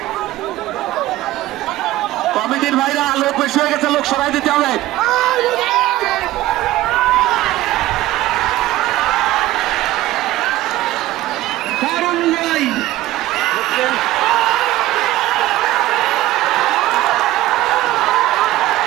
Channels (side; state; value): left; quieter; 16.1 dB